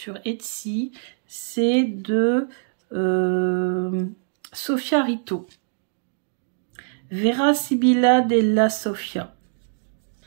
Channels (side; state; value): left; silent; digital silence